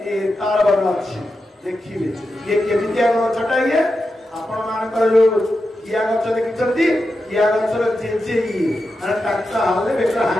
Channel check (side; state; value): both; normal; correlation 0.89